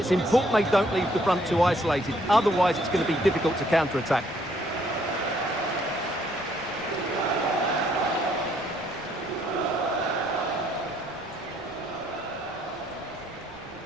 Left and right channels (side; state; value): left; noise; rumble, 24 dB below the sound